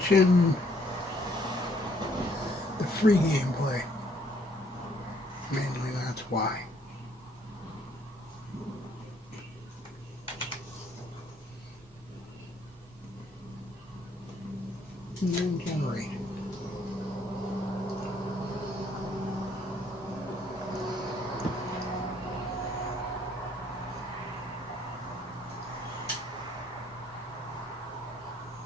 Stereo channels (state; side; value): normal; both; correlation 0.66